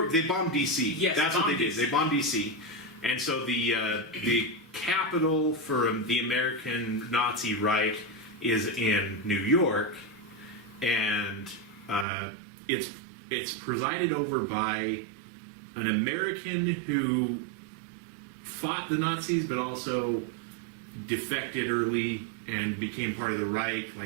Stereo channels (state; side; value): drops out; left; at 12.1 s